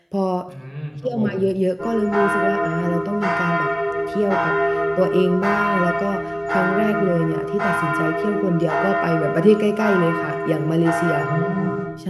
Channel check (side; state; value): both; identical; correlation 1.00